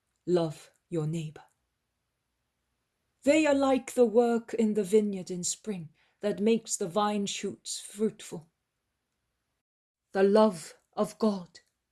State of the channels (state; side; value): identical; both; correlation 1.00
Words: Love your neighbor. They are like the work in the vineyard in spring that makes the vine shoots fruitful. The love of God